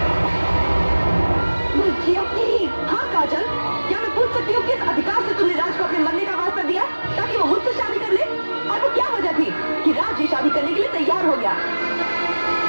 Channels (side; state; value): both; inverted; correlation -1.00